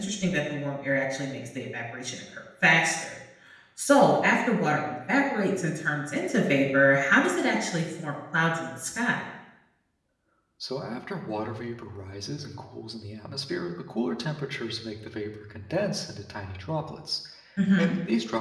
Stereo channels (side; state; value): both; identical; correlation 1.00